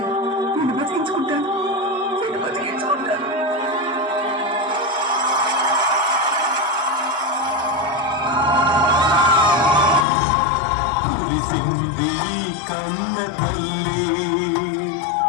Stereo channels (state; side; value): drops out; right; at 10.1 s